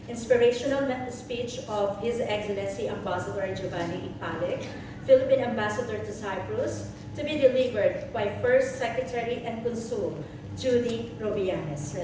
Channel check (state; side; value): identical; both; correlation 1.00